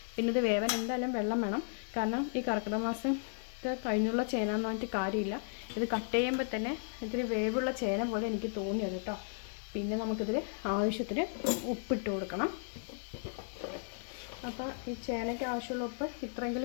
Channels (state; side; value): silent; right; digital silence